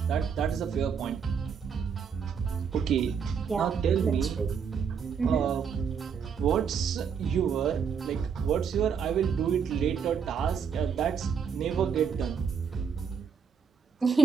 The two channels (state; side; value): quieter; left; 6.7 dB